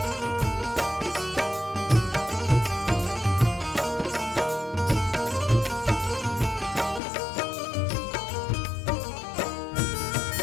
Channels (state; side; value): drops out; right; at 7.0 s